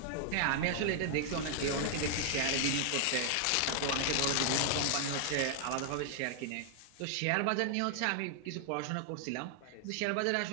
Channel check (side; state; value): both; different; correlation 0.00